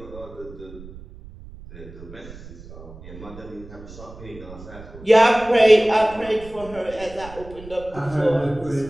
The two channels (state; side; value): noise; right; rumble, 17 dB below the sound